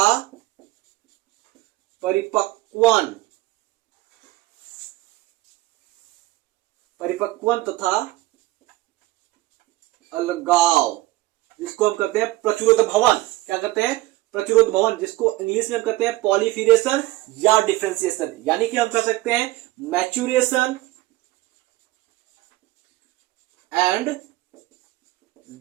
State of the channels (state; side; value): quieter; left; 18.0 dB